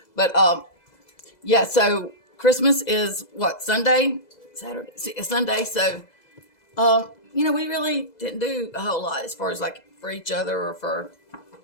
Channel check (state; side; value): late; right; 2.0 ms